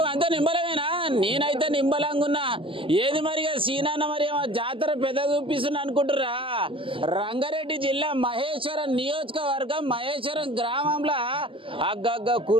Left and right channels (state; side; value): late; left; 0.25 ms